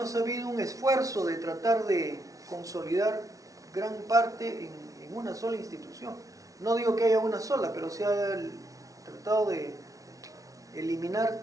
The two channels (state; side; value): late; left; 0.17 ms